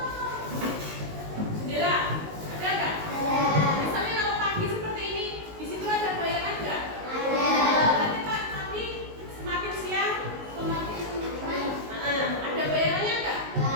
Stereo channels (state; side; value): late; left; 19 ms